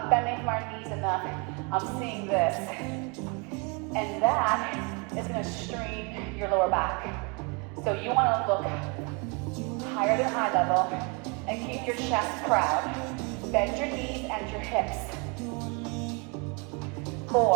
bending from our knees enough. I'm seeing this. And that is gonna strain your lower back. So you wanna look higher than eye level and keep your chest proud. Bend your knees and your hips.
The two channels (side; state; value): left; quieter; 32.1 dB